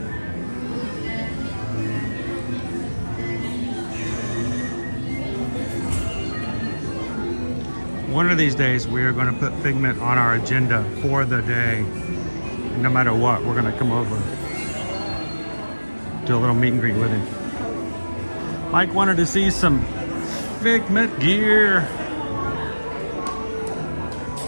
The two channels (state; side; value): inverted; both; correlation -1.00